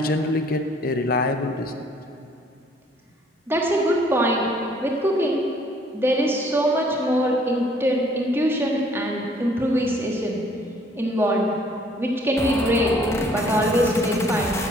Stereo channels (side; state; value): both; normal; correlation 0.61